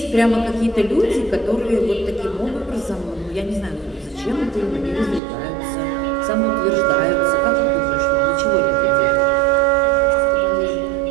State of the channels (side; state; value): left; drops out; at 5.2 s